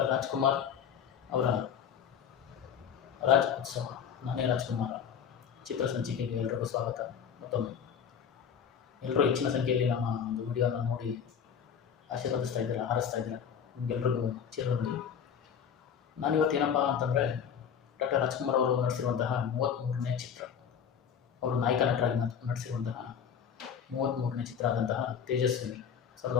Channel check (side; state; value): right; quieter; 7.7 dB